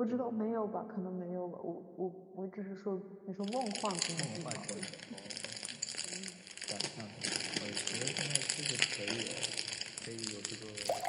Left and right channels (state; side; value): identical; both; correlation 1.00